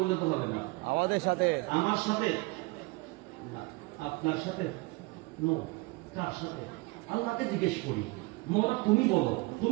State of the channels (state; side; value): quieter; left; 24.1 dB